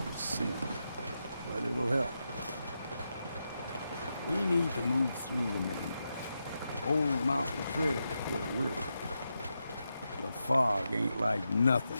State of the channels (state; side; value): inverted; both; correlation -0.87